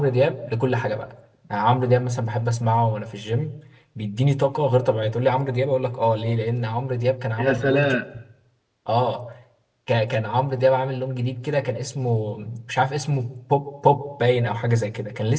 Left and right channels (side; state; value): both; identical; correlation 1.00